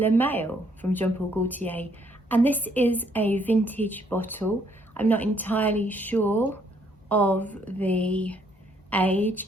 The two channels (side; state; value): both; normal; correlation 0.68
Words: Male from Gaultier, and this is a vintage bottle. I'm not entirely sure of the